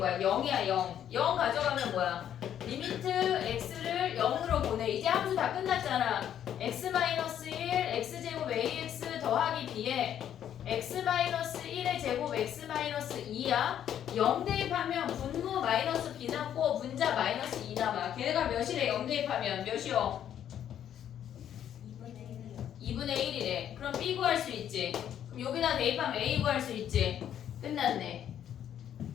0이야 0. 0 가져가면 뭐야? 리미트 x를 0으로 보내. 이제 함수 다 끝났잖아. x-1 x제곱 ax 더하기 b에 x-1의 제곱 x-2야. 0 대입하면 분모 마이너스 b 남고 분자 마이너스 2 남아. 걔네가 몇이래? 0 대입하면 몇이요? 2분의 1이래. 그럼 b 구할 수 있지. 그럼 여기다 대입하면 A 구할 수 있지. 끝났네.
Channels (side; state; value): right; quieter; 10.0 dB